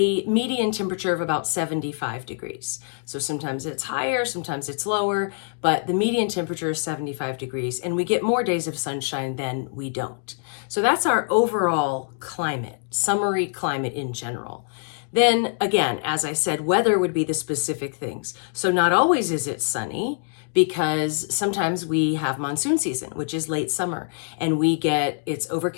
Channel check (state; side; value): silent; right; 58 dB below the other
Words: median temperature of about 75 degrees. So sometimes it's higher, sometimes it's lower, but the median temperature is 75 degrees and we get more days of sunshine than we don't. So that's our overall climate, summary climate in general. Then again, as I said, weather would be the specific things. So not always is it sunny, because sometimes we have monsoon season, which is late summer, and it's